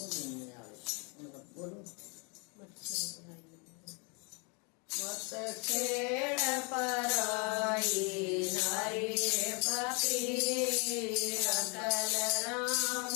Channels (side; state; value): right; quieter; 33.4 dB